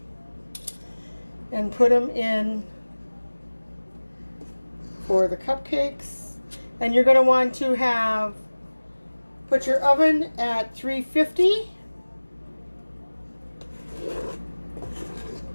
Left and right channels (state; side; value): inverted; both; correlation -1.00